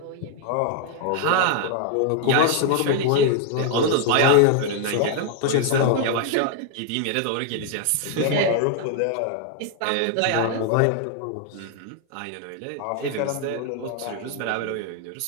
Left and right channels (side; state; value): both; different; correlation 0.00